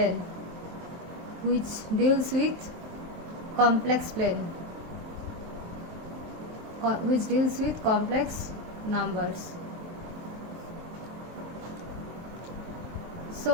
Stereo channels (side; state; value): left; late; 23 ms